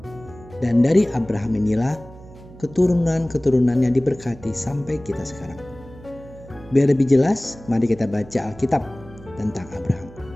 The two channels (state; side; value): noise; right; hum, 20 dB below the sound